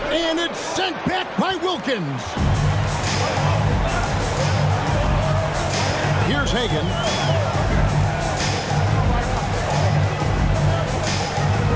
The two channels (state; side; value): identical; both; correlation 1.00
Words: it's sent back by Wilkins. Here's Hagan.